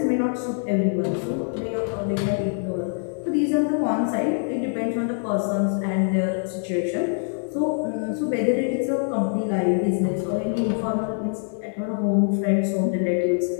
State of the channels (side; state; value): right; silent; 58 dB below the other